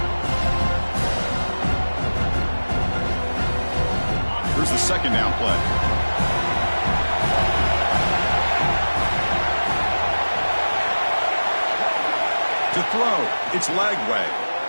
Here's the second down play. To throw, it's Lagway.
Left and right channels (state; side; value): inverted; both; correlation -1.00